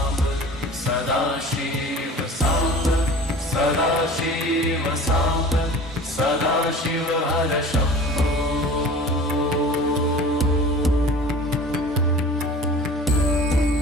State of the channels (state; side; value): normal; both; correlation 0.41